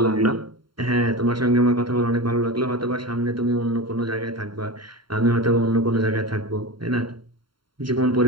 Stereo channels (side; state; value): left; late; 0.73 ms